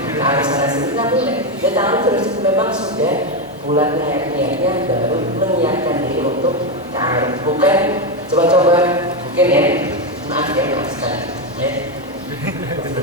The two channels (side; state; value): both; normal; correlation 0.09